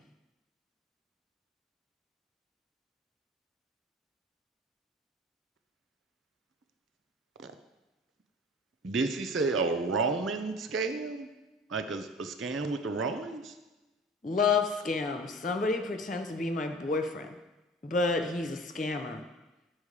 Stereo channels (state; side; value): normal; both; correlation 0.42